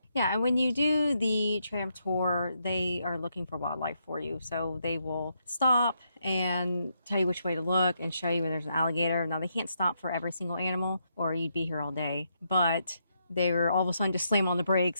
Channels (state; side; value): inverted; both; correlation -0.79